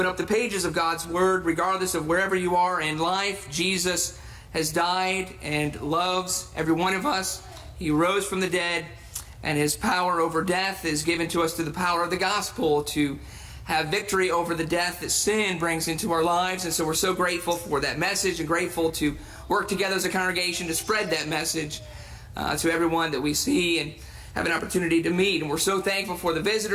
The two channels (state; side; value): identical; both; correlation 1.00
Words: up the pages of God's Word, regardless of wherever you are in life. Jesus has died and loves every one of us. He rose from the dead, and His power over death is given to us through the power of the gospel to have victory over the death that sin brings into our lives. And so we're so grateful for that message, and grateful to work together as a congregation to spread that message to everyone that we see and have an opportunity to meet. And we're so thankful for the